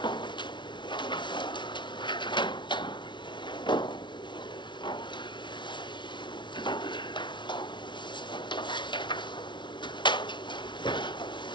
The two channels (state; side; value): late; right; 0.23 ms